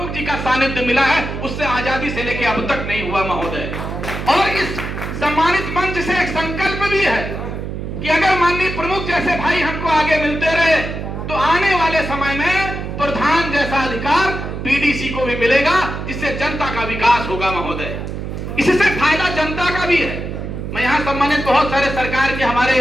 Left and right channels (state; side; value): noise; right; hum, 6 dB below the sound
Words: जी का सानिध्य मिला है, उससे आजादी से लेकर अब तक नहीं हुआ महोदय। और इस सम्मानित मंच से एक संकल्प भी है कि अगर माननीय प्रमुख जैसे भाई हमको आगे मिलते रहे तो आने वाले समय में प्रधान जैसा अधिकार बीडीसी को भी मिलेगा, जिससे जनता का विकास होगा महोदय। इससे फायदा जनता का भी है। मैं यहाँ सम्मानित बहुत सारे सरकार के हमारे